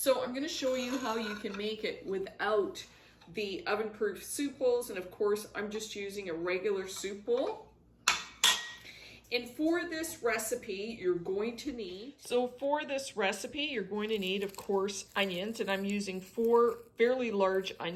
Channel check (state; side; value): identical; both; correlation 1.00